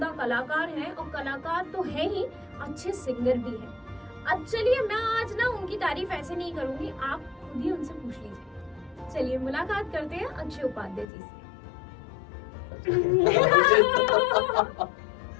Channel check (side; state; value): right; drops out; at 11.1 s